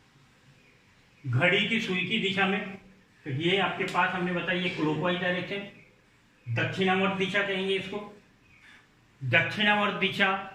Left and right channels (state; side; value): identical; both; correlation 1.00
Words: घड़ी की सुई की दिशा में, तो ये आपके पास हमने बताया क्लॉकवाइज डायरेक्शन, दक्षिणावर्त दिशा कहेंगे इसको। दक्षिणावर्त दिशा,